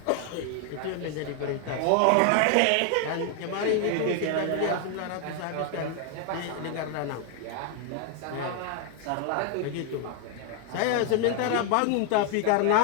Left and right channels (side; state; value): both; different; correlation 0.00